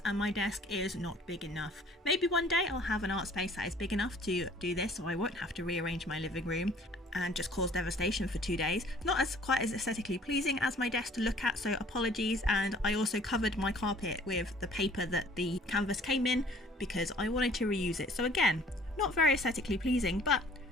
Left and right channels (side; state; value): both; normal; correlation 0.54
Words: and my desk is not big enough. Maybe one day I'll have an art space that is big enough to do this, so I won't have to rearrange my living room and just cause devastation for 2 days. Not as quite as aesthetically pleasing as my desk to look at, so apologies. And I also covered my carpet with the paper that the canvas came in because I wanted to reuse it. So again, not very aesthetically pleasing, but